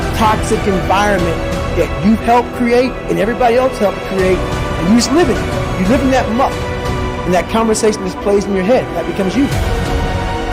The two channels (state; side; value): identical; both; correlation 1.00